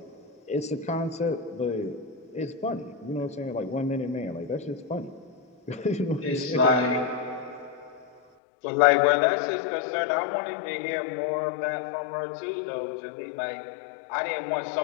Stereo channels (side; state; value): right; drops out; at 8.2 s